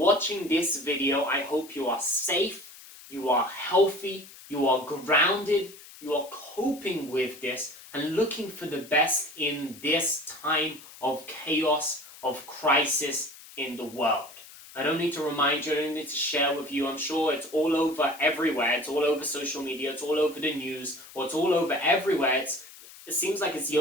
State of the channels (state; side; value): noise; left; hiss, 19 dB below the sound